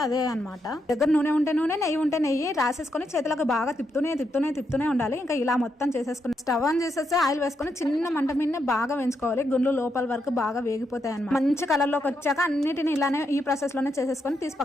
అదే అనమాట. దగ్గర నూనె ఉంటే నూనె, నెయ్యి ఉంటే నెయ్యి రాసేసుకొని చేతులకు బాగా తిప్పుతూనే ఉండాలి. ఇంకా ఇలా మొత్తం చేసేసుకుని స్టవ్ ఆన్ చేసేసి ఆయిల్ వేసుకొని చిన్న మంట మీద బాగా వేయించుకోవాలి. గుండ్లు లోపల వరకు బాగా వేగిపోతాయి అన్నమాట. మంచి కలర్ లోకి వచ్చాక అన్నిటిని ఇలానే ఈ ప్రాసెస్ లోనే చేసేసుకొని తీసి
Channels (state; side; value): normal; both; correlation 0.81